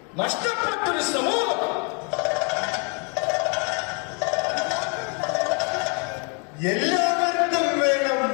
നഷ്ടപ്പെട്ടൊരു സമൂഹം. എല്ലാവർക്കും വേണം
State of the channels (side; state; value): right; quieter; 36.3 dB